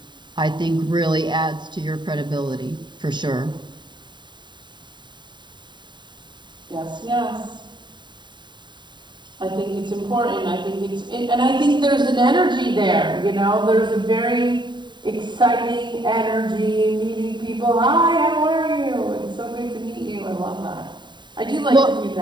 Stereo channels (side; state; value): left; late; 0.22 ms